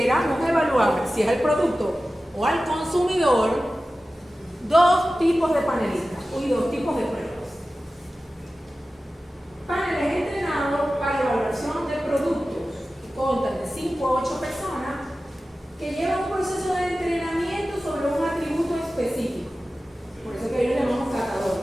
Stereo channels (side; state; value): both; normal; correlation 0.95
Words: evaluar, si es el producto o al consumidor, dos tipos de panelistas y dos tipos de pruebas. Paneles entrenados para evaluación de productos, que constan de 5 a 8 personas, que llevan un proceso de entrenamiento sobre un atributo específico. Por eso que ellos le llamamos